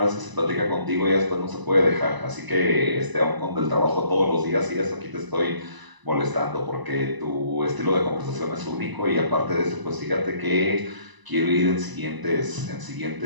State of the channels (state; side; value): late; left; 1.0 ms